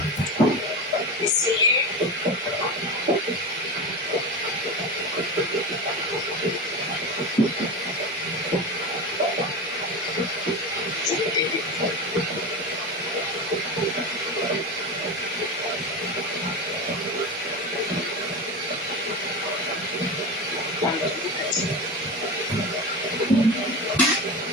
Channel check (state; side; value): normal; both; correlation 0.23